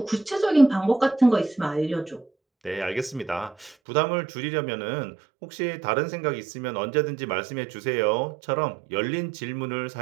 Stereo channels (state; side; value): drops out; left; at 3.8 s